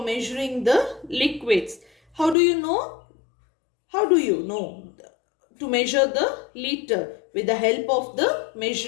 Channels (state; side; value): drops out; right; at 2.4 s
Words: measuring the liquids. How do you know? How do you know to measure the liter? With the help of the